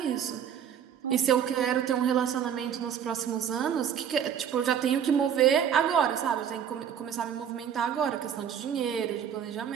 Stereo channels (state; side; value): quieter; left; 8.7 dB